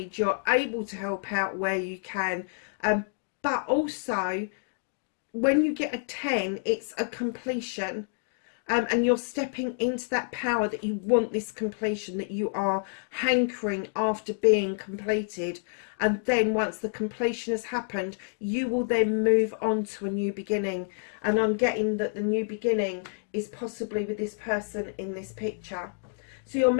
you're able to help out where you can, but also when you get a 10, it's a completion, and you're stepping into that power that you want, this completion, that you are hankering after being completed. And then once the completion has happened, you will then move on to a new beginning. And I'm getting that the new beginning is possibly with this person in this picture. So your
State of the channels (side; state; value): right; silent; digital silence